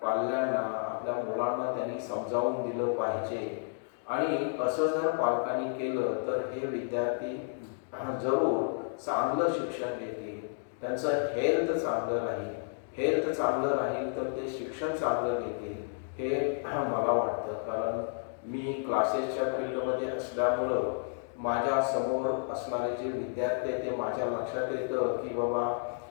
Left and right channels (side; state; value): right; silent; digital silence